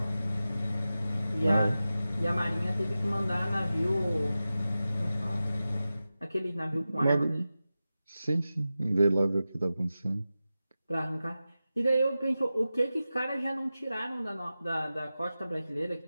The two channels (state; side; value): inverted; both; correlation -0.94